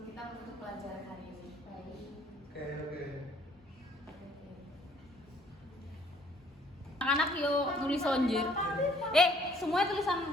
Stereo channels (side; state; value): both; normal; correlation 0.61